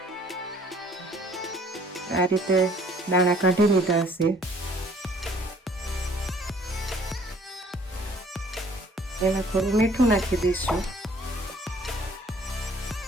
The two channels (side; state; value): both; normal; correlation 0.58